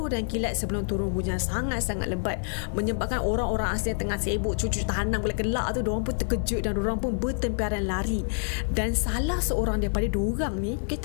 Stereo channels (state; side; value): silent; right; 56 dB below the other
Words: dan kilat sebelum turun hujan sangat-sangat lebat, menyebabkan orang-orang asli yang tengah sibuk cucuk tanam gelak tu, diorang pun terkejut dan diorang pun bertemparan lari. Dan salah seorang daripada diorang ni, okay,